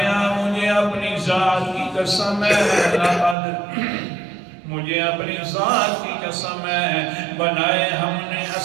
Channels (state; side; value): drops out; left; at 3.4 s